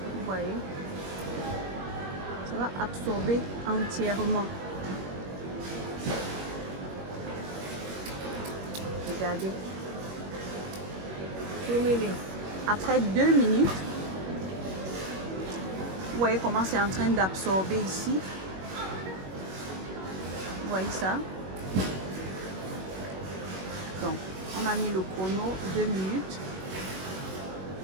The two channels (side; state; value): left; late; 21 ms